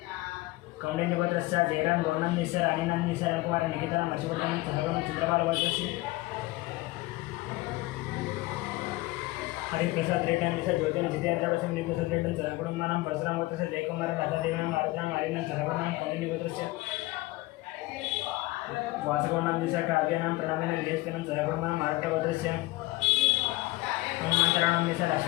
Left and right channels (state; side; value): quieter; right; 20.1 dB